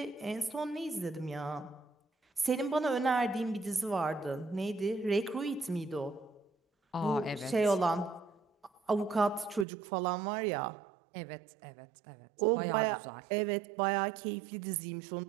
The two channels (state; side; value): drops out; left; at 9.7 s